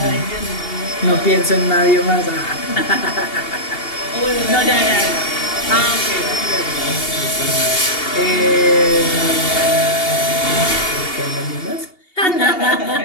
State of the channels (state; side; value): late; right; 2.8 ms